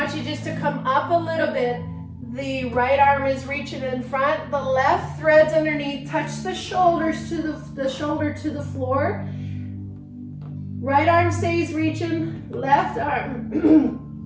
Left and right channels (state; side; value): identical; both; correlation 1.00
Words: you just to come up a little bit. The right arm is reaching in front. The left threads underneath. Touch the shoulders to the shoulder to the floor. Right arm stays reaching. Left arm